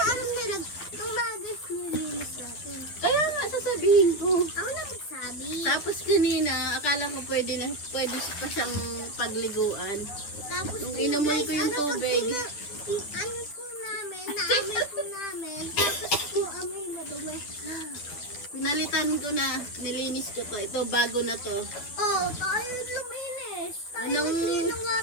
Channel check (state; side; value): late; right; 10 ms